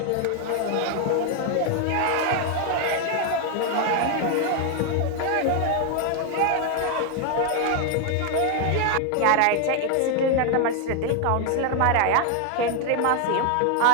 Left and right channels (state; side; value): different; both; correlation 0.01